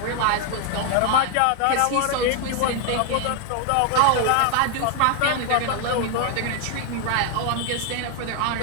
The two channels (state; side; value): different; both; correlation 0.00